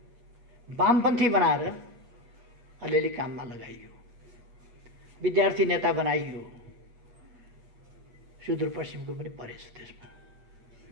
वामपन्थी बनाएर अलिअलि काममा लगाइयो, विद्यार्थी नेता बनाइयो। सुदूरपश्चिमको पनि परेछ त्यसमा।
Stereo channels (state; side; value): late; left; 8.3 ms